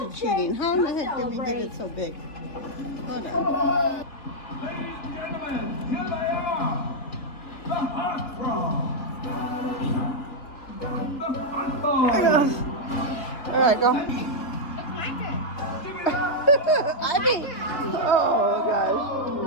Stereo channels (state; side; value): late; right; 3.2 ms